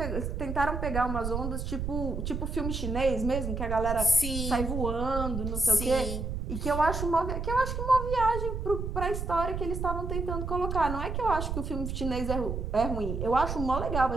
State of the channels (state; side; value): noise; right; rumble, 3 dB below the sound